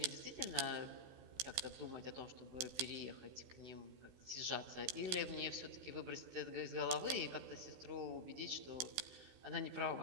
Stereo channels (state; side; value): late; left; 16 ms